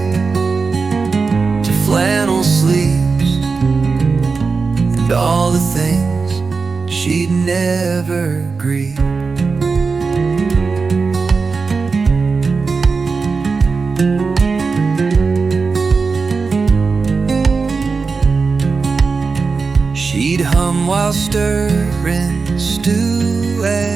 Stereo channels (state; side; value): quieter; left; 4.6 dB